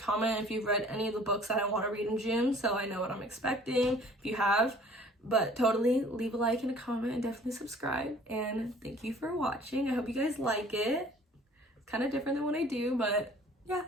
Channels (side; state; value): both; normal; correlation 0.52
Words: if you've read any of the books that I want to read in June, so I know what I'm expecting if you have. But totally leave a like and a comment and definitely subscribe. And thank you for watching. I hope you guys like it. It's kind of different than what I do, but yeah,